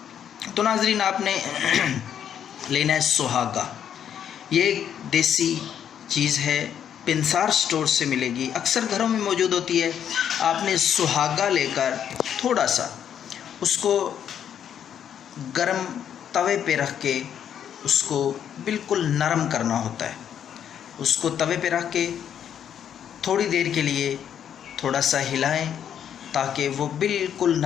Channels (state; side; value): quieter; right; 9.1 dB